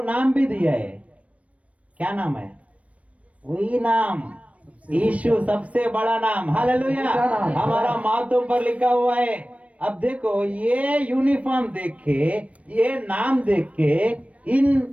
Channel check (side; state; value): left; late; 0.065 ms